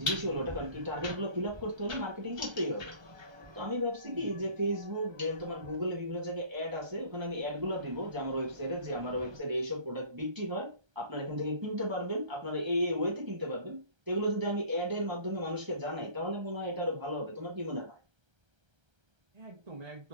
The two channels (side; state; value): left; late; 1.3 ms